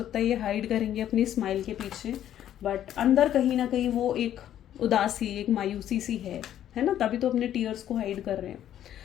है ये हाइड करेंगे अपनी स्माइल के पीछे, बट अंदर कहीं ना कहीं वो एक उदासी, एक मायूसी सी है ना, तभी तो अपने टीयर्स को हाइड कर रहे हैं।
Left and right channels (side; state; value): right; quieter; 11.2 dB